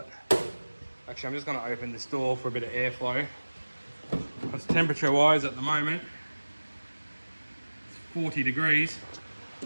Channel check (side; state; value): both; inverted; correlation -1.00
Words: Actually, I'm just going to open this door for a bit of airflow. Because temperature wise at the moment, it's 40 degrees.